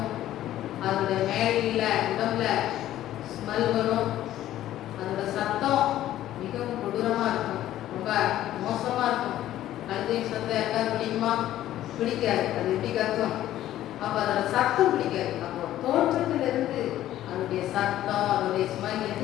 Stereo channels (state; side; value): quieter; right; 13.3 dB